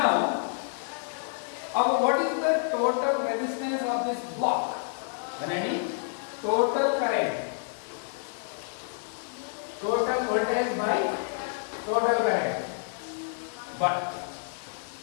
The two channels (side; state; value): right; silent; 59 dB below the other